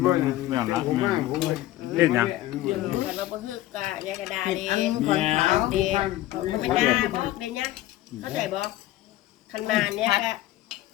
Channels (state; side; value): quieter; right; 15.5 dB